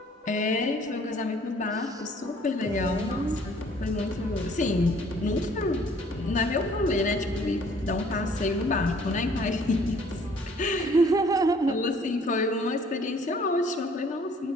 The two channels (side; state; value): both; normal; correlation 0.57